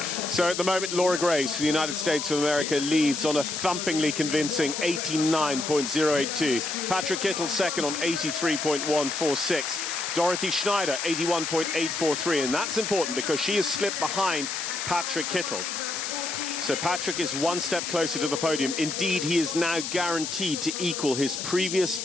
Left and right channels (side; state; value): left; noise; hiss, 5 dB below the sound